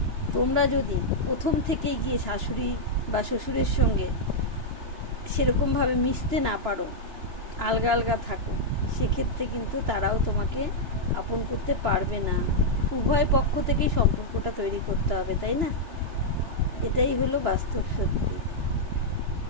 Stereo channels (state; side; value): late; left; 2.9 ms